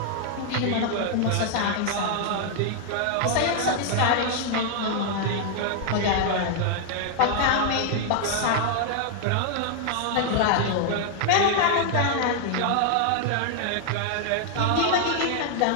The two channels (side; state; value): both; different; correlation 0.00